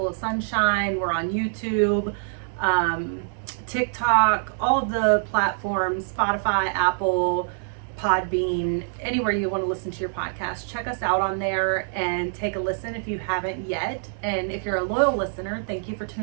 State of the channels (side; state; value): left; silent; digital silence